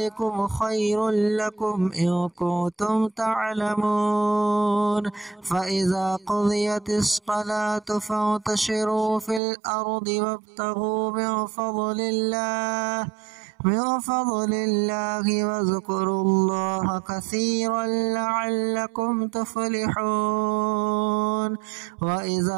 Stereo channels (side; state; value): left; drops out; at 9.4 s